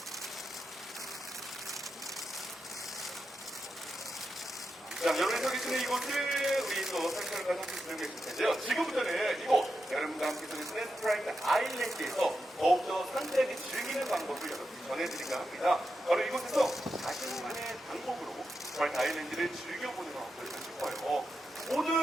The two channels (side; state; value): both; normal; correlation 0.88